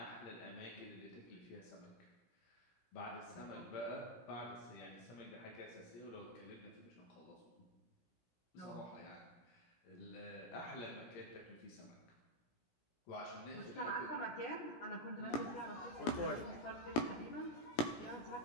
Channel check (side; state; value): right; late; 17 ms